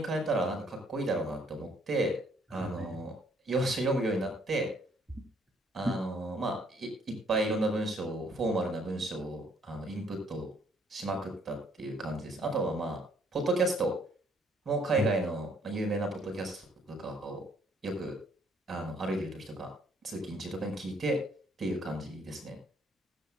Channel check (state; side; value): normal; both; correlation 0.65